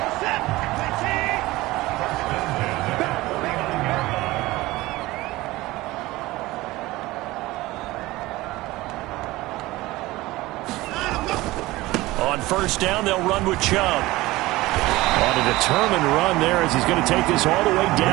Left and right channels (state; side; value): quieter; left; 19.1 dB